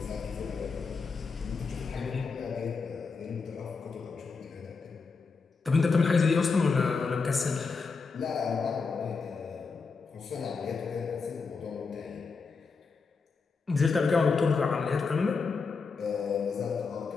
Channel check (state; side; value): quieter; right; 4.8 dB